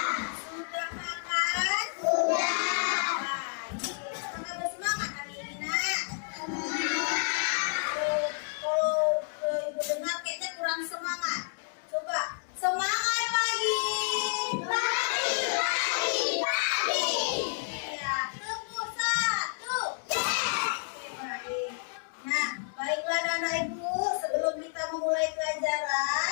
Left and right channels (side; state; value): right; silent; digital silence